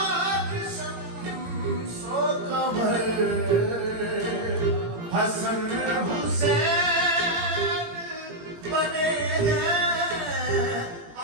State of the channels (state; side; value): late; left; 18 ms